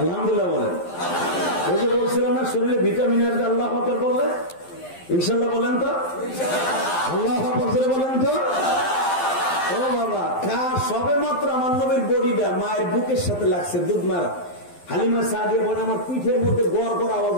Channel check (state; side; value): late; right; 12 ms